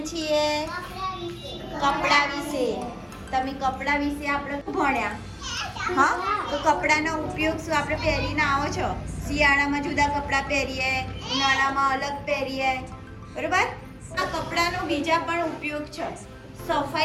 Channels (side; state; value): both; identical; correlation 1.00